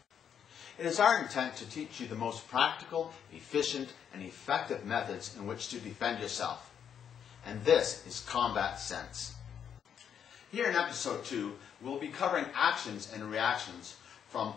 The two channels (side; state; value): right; quieter; 8.3 dB